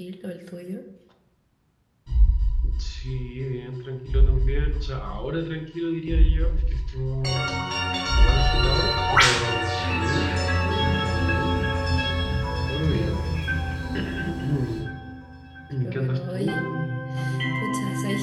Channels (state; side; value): identical; both; correlation 1.00